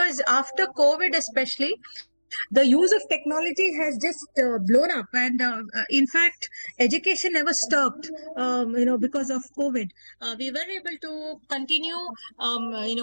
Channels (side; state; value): both; inverted; correlation -1.00